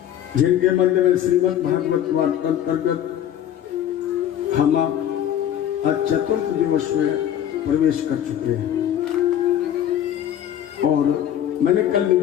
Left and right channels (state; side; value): quieter; right; 10.6 dB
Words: जिनके मध्य में श्रीमद् भागवत वार्ता अंतर्गत हम आज चतुर्थ दिवस में प्रवेश कर चुके हैं। और मैंने कल